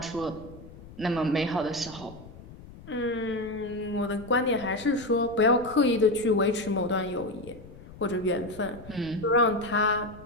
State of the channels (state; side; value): noise; left; rumble, 18 dB below the sound